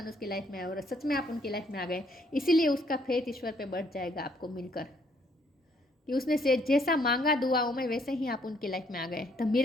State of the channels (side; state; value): both; normal; correlation 0.68